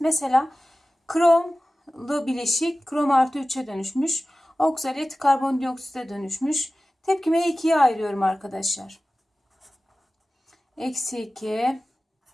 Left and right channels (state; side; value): normal; both; correlation 0.96